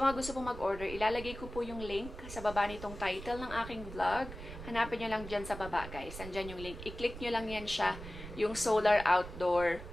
mga gusto pong mag-order, ilalagay ko po yung link sa baba nitong title ng aking vlog. Hanapin nyo lang dyan sa baba, guys. Andyan yung link. I-click nyo lang yan siya, yung solar outdoor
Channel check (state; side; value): noise; right; rumble, 11 dB below the sound